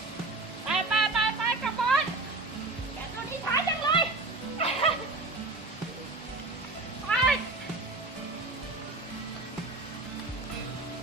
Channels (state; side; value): quieter; left; 3.2 dB